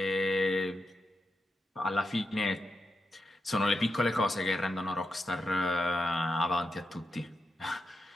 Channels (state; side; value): normal; both; correlation 0.87